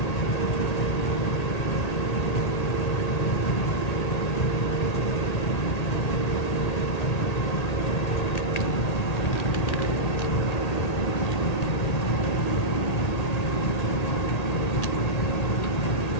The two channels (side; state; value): right; late; 1.8 ms